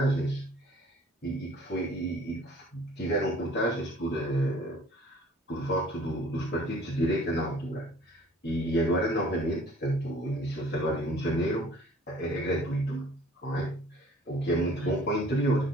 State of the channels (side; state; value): both; normal; correlation 0.53